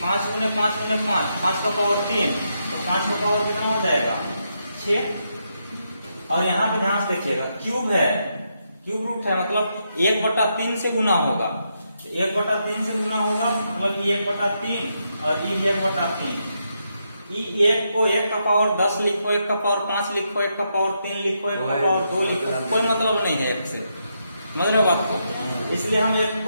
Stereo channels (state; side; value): inverted; both; correlation -0.81